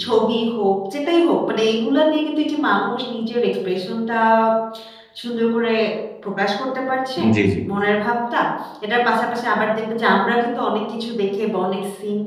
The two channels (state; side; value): identical; both; correlation 1.00